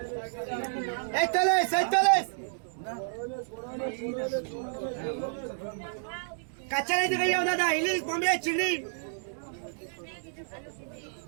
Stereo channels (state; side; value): silent; left; digital silence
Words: 41 কাঁচা नहीं दिखाई दादा, इंग्लिश बॉम्बे चिल्ली।